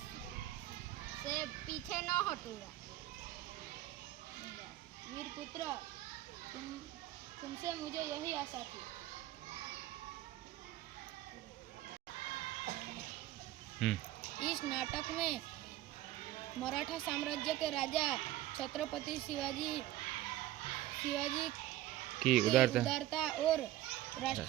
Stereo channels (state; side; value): quieter; left; 14.9 dB